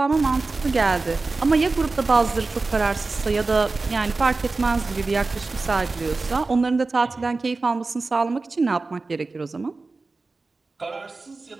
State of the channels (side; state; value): left; quieter; 3.7 dB